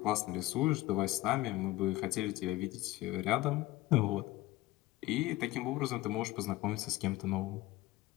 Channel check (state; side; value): quieter; right; 17.5 dB